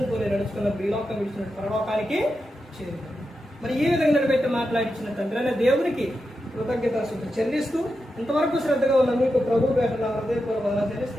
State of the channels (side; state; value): both; normal; correlation 0.88